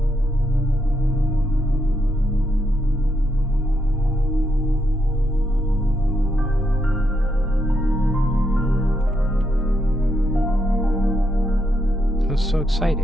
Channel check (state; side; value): normal; both; correlation 0.80